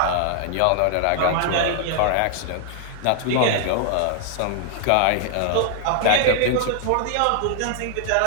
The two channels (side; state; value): both; different; correlation 0.00